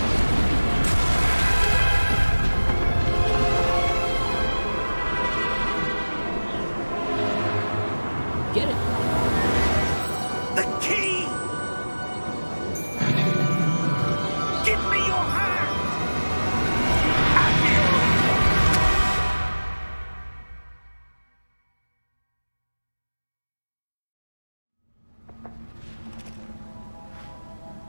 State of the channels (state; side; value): inverted; both; correlation -1.00